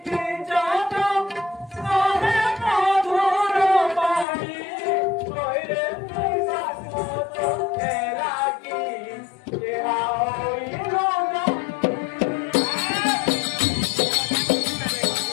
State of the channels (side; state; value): right; drops out; at 4.2 s